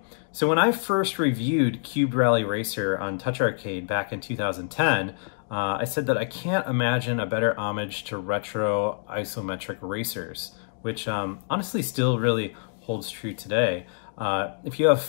when I first reviewed Cubed Rally Racer on Touch Arcade back in 2010, I said that I can't imagine a better homage to retro isometric racers, which honestly still really holds true today. If you have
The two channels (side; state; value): right; silent; digital silence